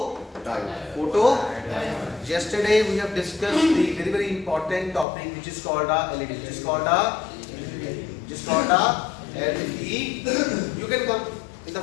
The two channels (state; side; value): drops out; right; at 5.1 s